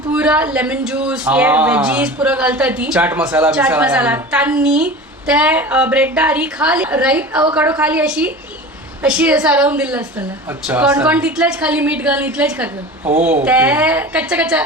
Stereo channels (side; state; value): both; normal; correlation 0.34